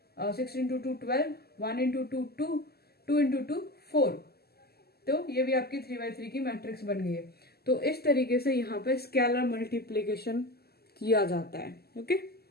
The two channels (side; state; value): right; late; 0.46 ms